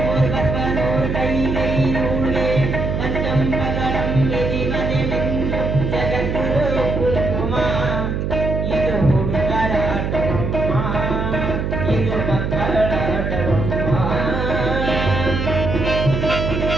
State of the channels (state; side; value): noise; right; hum, 1 dB below the sound